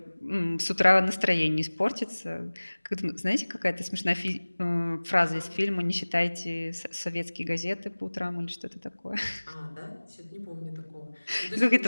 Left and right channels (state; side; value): inverted; both; correlation -1.00